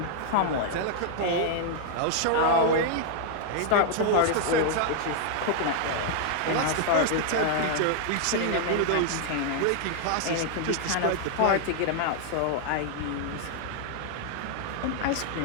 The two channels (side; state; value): both; different; correlation 0.00